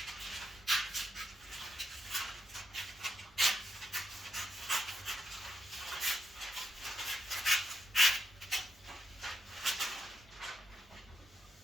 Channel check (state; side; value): normal; both; correlation 0.83